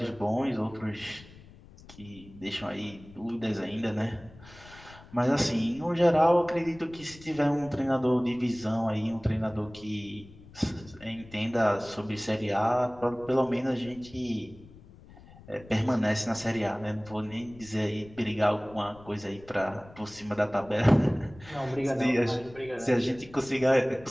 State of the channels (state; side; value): noise; left; rumble, 21 dB below the sound